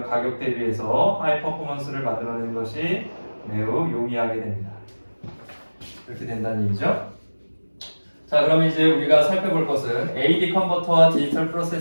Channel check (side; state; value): both; inverted; correlation -1.00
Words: 가격 대비해서 하이 퍼포먼스를 만들어내는 것이 매우 용이하게 됩니다. 이렇게 된다는 얘기죠. 자, 그럼 이제 우리가 살펴볼 것은 AD 컨버터와 디지털